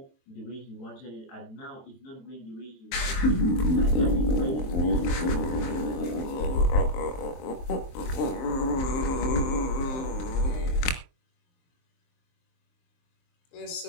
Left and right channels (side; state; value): right; late; 23 ms